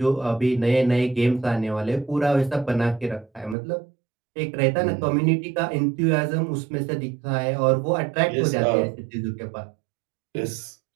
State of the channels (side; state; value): left; drops out; at 3.6 s